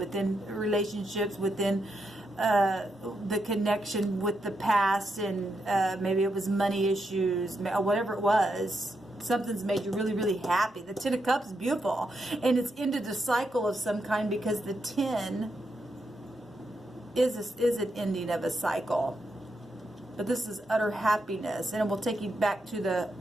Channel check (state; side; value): normal; both; correlation 0.82